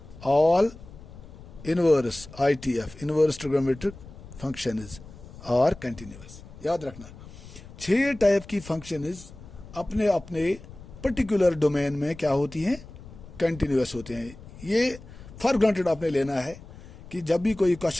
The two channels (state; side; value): noise; left; rumble, 17 dB below the sound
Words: all inverse ITF, inverse trigonometric functions are continuous. याद रखना 6 टाइप की फंक्शंस अपने अपने पर्टिकुलर डोमेन में क्या होती हैं, कंटिन्यूअस होते हैं. ये फॉर ग्रांटेड आपने लेना है कि जब भी कोई